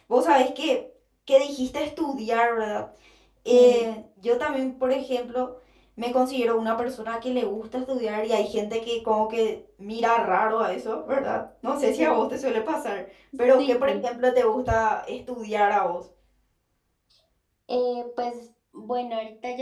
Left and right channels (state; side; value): identical; both; correlation 1.00